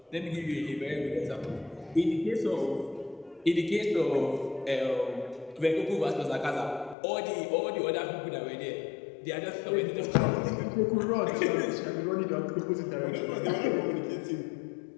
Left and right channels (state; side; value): drops out; right; at 7.0 s